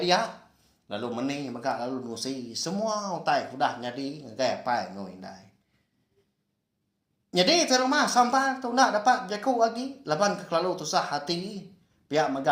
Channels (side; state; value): both; identical; correlation 1.00